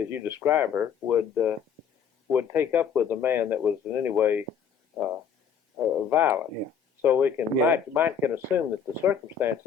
you describe her, would would take up with a man that was in any way violent. Yeah. So we can Yeah. might can assume that the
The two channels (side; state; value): right; quieter; 7.2 dB